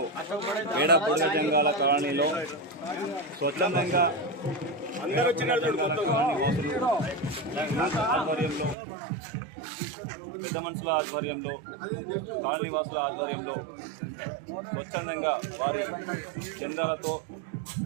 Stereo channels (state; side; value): drops out; left; at 8.8 s